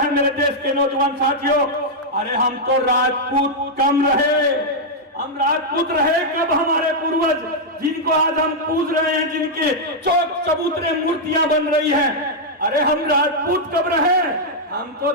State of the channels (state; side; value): normal; both; correlation -0.04